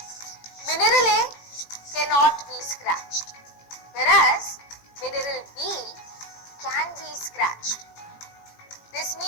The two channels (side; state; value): right; late; 18 ms